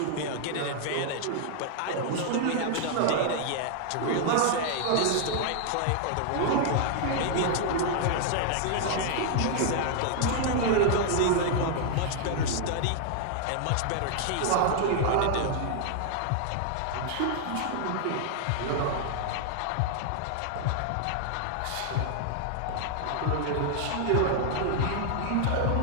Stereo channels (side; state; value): both; different; correlation 0.00